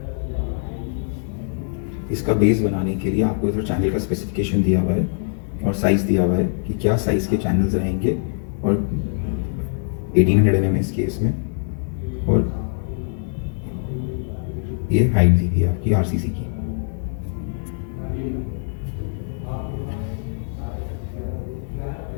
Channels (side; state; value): right; silent; digital silence